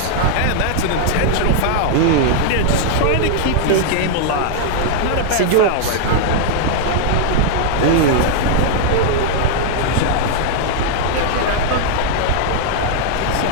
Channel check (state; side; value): different; both; correlation -0.01